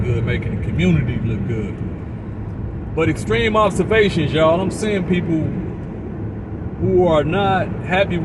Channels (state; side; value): identical; both; correlation 1.00